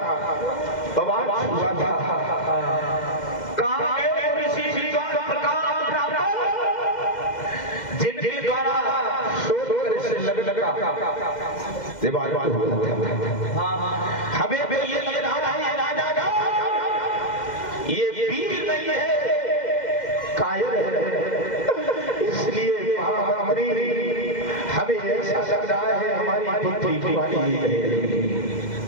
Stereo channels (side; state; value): right; late; 2.1 ms